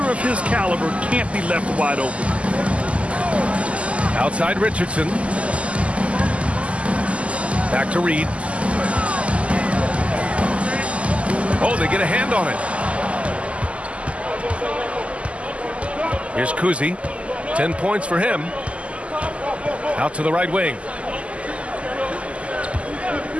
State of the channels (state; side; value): late; left; 0.060 ms